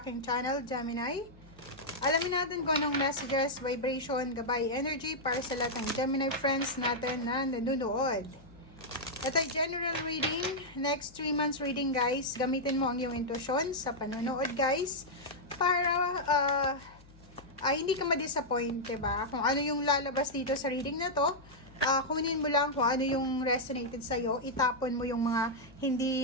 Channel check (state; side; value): noise; left; hum, 24 dB below the sound